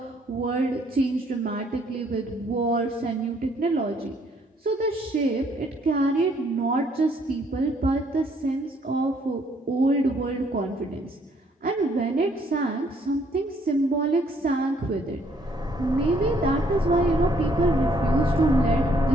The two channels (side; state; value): both; normal; correlation 0.66